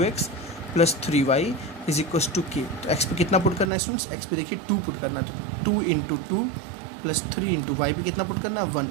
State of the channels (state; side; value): drops out; left; at 3.7 s